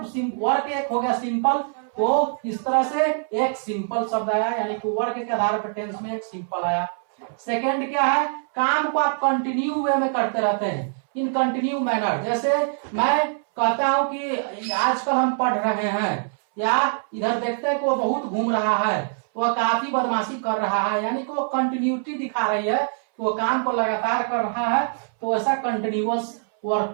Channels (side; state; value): left; silent; 63 dB below the other